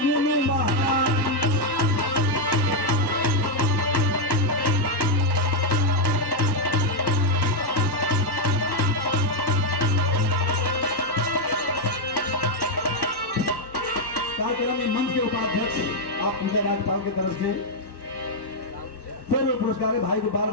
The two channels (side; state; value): right; late; 1.1 ms